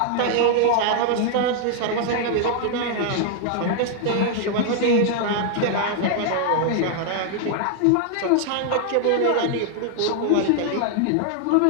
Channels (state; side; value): different; both; correlation 0.00